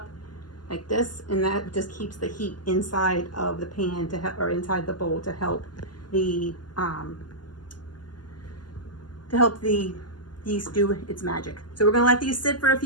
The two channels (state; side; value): late; right; 0.71 ms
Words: like this, and that just keeps the heat inside of the pan or inside the bowl to help the yeast do its magic. So we're gonna let these sit for a